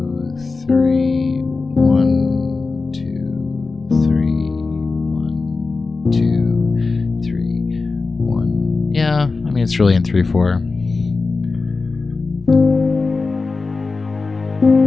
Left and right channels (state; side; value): quieter; right; 4.0 dB